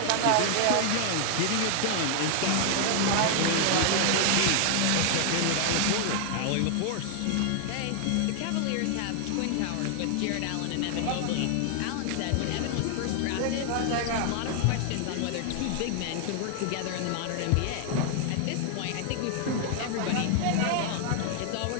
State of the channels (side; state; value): both; different; correlation 0.00